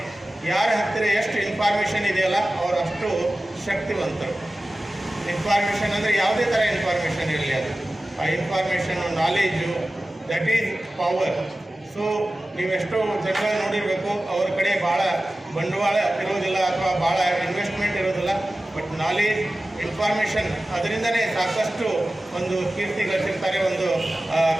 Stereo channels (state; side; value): normal; both; correlation 0.95